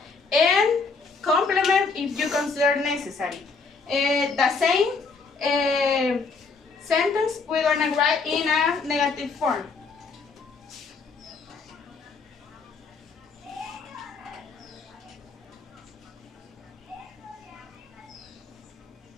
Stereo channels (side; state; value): right; quieter; 4.5 dB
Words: And complement if you consider necessary. The same sentence we're gonna write in a negative form.